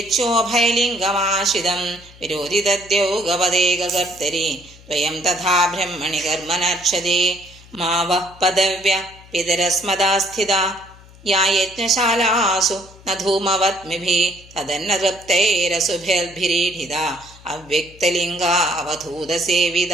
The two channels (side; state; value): left; noise; hum, 23 dB below the sound